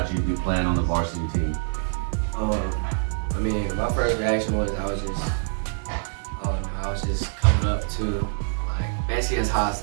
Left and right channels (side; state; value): left; silent; digital silence